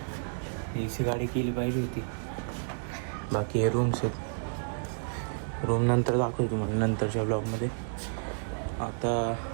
AC गाडी केली पाहिजे होती. बाकी हे रूम्स आहेत, रूम नंतर दाखवतो तुम्हाला नंतरच्या ब्लॉगमध्ये. आता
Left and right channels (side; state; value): left; silent; digital silence